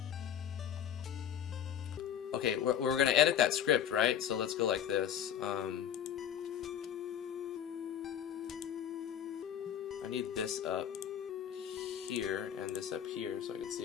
Okay, we're going to edit that script, right? So let's go like this. I need this up here and this up here so I can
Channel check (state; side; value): quieter; right; 9.5 dB